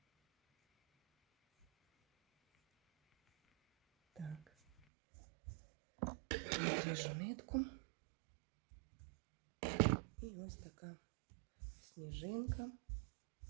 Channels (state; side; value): drops out; left; at 4.8 s